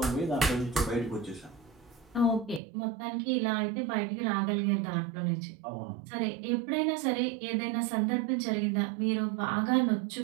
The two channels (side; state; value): left; drops out; at 2.6 s